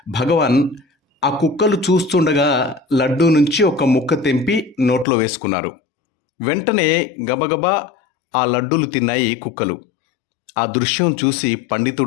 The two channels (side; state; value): right; drops out; at 5.1 s